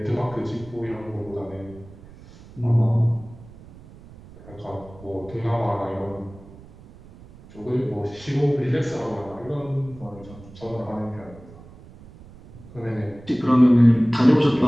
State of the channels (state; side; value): noise; right; rumble, 20 dB below the sound